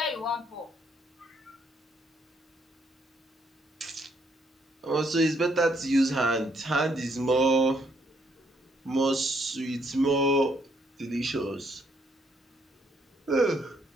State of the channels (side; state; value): both; normal; correlation 0.71